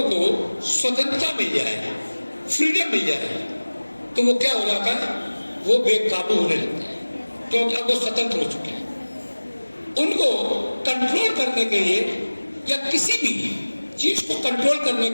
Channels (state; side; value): inverted; both; correlation -1.00